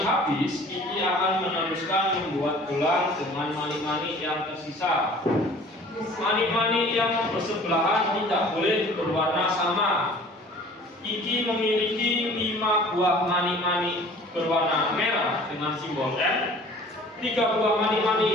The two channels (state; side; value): normal; both; correlation 0.48